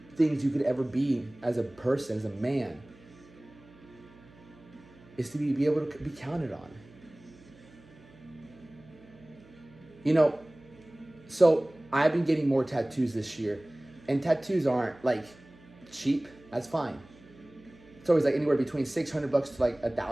things you could ever be as a person, as a man, is to be able to be counted on. You know, so I've been getting more tattoos this year, and tattoos aren't like cheap. That's fine. It's always like anywhere between $600 to like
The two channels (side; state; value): right; noise; hum, 24 dB below the sound